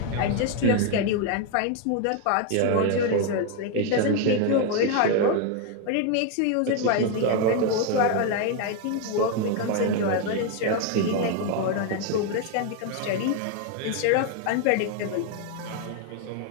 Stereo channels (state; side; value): different; both; correlation 0.01